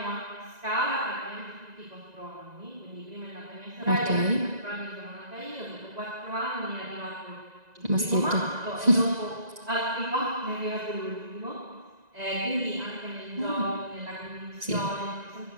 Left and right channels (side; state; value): left; late; 1.9 ms